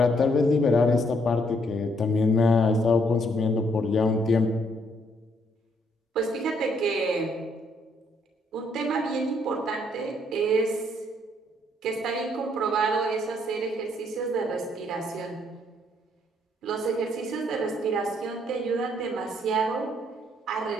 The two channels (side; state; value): both; normal; correlation 0.70